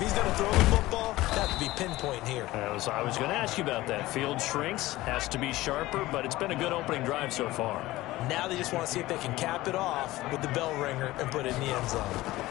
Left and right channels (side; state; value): right; quieter; 17.7 dB